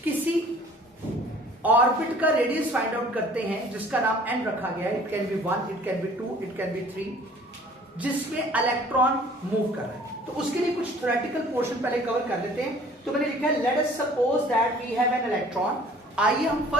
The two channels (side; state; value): both; normal; correlation 0.52